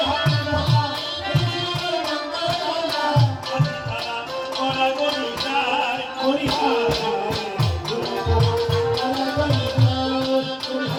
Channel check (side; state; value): both; identical; correlation 1.00